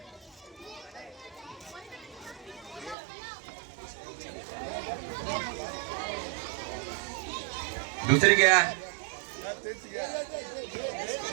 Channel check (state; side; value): drops out; left; at 3.0 s